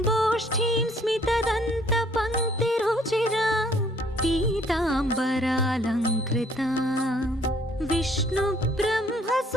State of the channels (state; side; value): normal; both; correlation 0.62